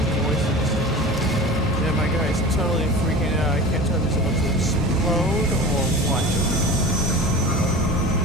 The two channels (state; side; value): normal; both; correlation 0.35